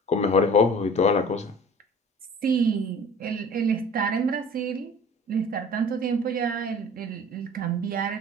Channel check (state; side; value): normal; both; correlation 0.44